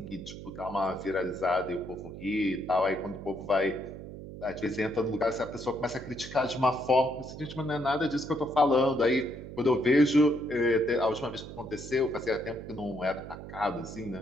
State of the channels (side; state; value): right; noise; hum, 12 dB below the sound